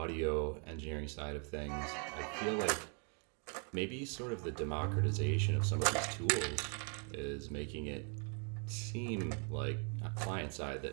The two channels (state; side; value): quieter; left; 39.7 dB